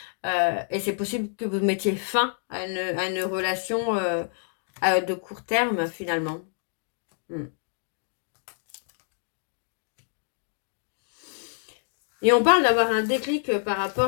Et c'est possible que vous mettiez fin à une relation de court terme, finalement. Et on parle d'avoir un déclic par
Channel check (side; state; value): right; silent; digital silence